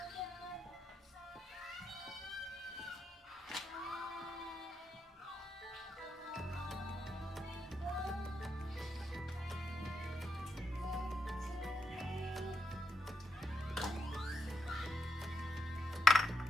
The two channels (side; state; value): both; normal; correlation 0.80